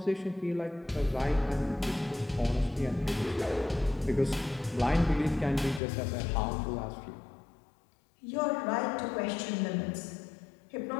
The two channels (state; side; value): drops out; right; at 5.8 s